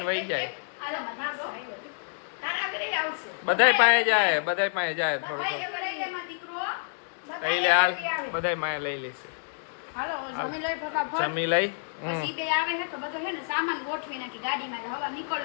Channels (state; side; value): silent; right; digital silence